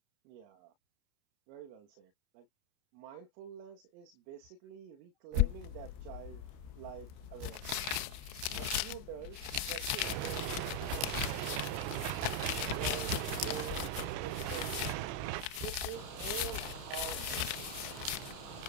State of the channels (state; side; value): late; left; 29 ms